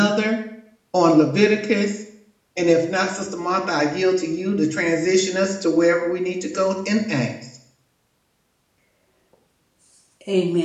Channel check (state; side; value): identical; both; correlation 1.00